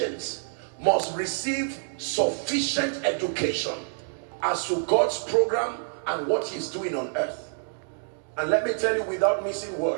must receive sufficient education as to God's program and what He's doing on earth. And let me tell you without missing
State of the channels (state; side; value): silent; left; digital silence